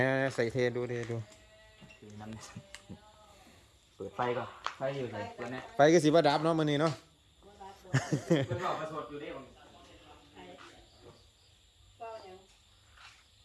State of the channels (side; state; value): both; identical; correlation 1.00